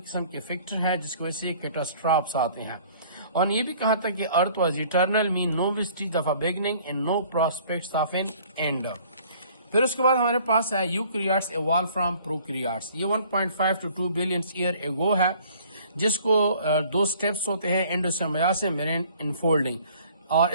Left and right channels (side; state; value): both; inverted; correlation -0.55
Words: قسم کے فیکٹر ہیں جس کی وجہ سے کیٹاسٹرافس آتے ہیں. اور یہ بھی کہا تھا کہ earth was eternal mean no vestige of a beginning and no prospects of an end. پھر اس کے بعد ہمارے پاس ہے یوکریاٹس ایوالو فرام پروکریاٹس. یہ 1.5 to 2 بلین ایئر ایگو ہے، جس کو دو سٹیپس ہوتے ہیں، انڈوسیمبیاسس میرین انفولڈنگ. اور